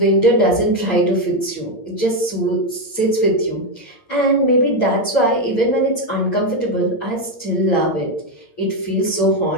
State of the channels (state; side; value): late; right; 8.7 ms